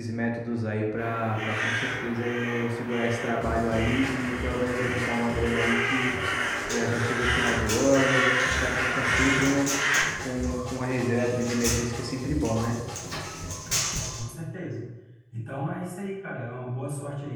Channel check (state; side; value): identical; both; correlation 1.00